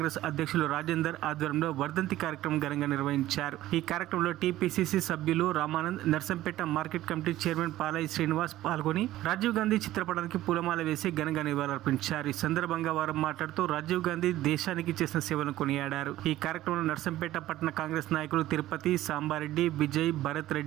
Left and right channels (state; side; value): quieter; left; 14.9 dB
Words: అధ్యక్షులు రాజేందర్ ఆధ్వర్యంలో వర్ధంతి కార్యక్రమం ఘనంగా నిర్వహించారు. ఈ కార్యక్రమంలో టీపీసీసీ సభ్యులు Ramanand, Narsampet market committee chairman Palaiah Srinivas పాల్గొని రాజీవ్ గాంధీ చిత్రపటానికి పూలమాల వేసి ఘనంగా నివాళులర్పించారు. ఈ సందర్భంగా వారు మాట్లాడుతూ రాజీవ్ గాంధీ దేశానికి చేసిన సేవలను కొనియాడారు. ఈ కార్యక్రమంలో నర్సంపేట పట్టణ కాంగ్రెస్ నాయకులు తిరుపతి, సాంబారెడ్డి, విజయ్, భరత్